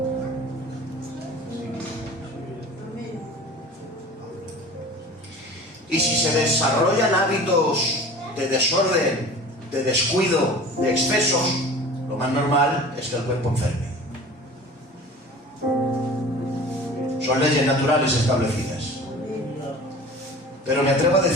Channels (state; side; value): normal; both; correlation 0.40